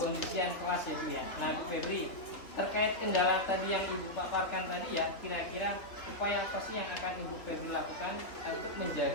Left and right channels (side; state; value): right; late; 3.2 ms